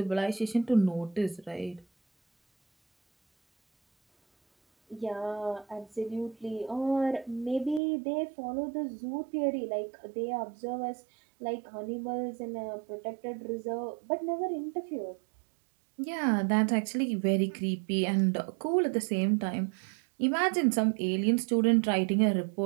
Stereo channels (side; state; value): left; drops out; at 7.8 s